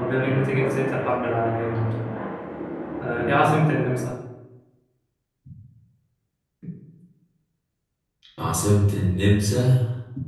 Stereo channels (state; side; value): identical; both; correlation 1.00